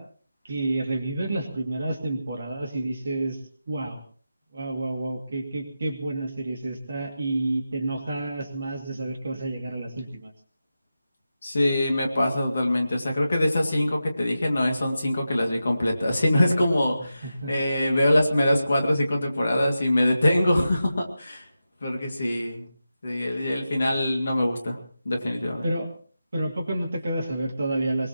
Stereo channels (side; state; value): both; inverted; correlation -0.90